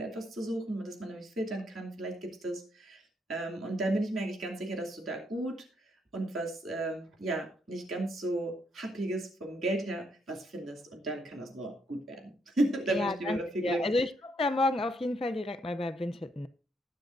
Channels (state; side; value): normal; both; correlation 0.74